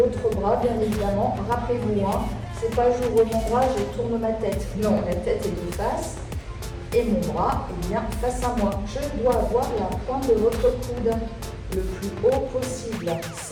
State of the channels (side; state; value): both; identical; correlation 1.00